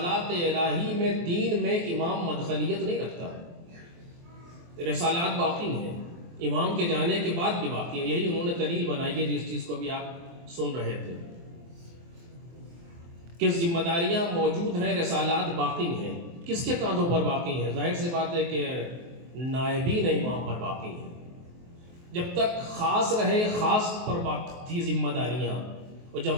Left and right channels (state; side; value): late; left; 23 ms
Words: الہی میں دین میں امام مدخلیت نہیں رکھتا، رسالات باقی ہیں، امام کے جانے کے بعد بھی باقی ہیں۔ یہی انہوں نے دلیل بنائی ہے جس چیز کو بھی آپ سن رہے تھے کہ ذمہ داریاں موجود ہیں، رسالات باقی ہیں۔ کس کے کاندھوں پر باقی ہیں؟ ظاہر سی بات ہے کہ نائبین امام پر باقی ہیں۔ جب تک خاص رہے خاص پر باقی تھی ذمہ داریاں، اور جب